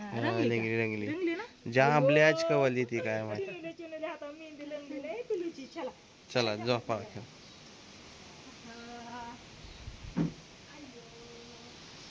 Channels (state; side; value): identical; both; correlation 1.00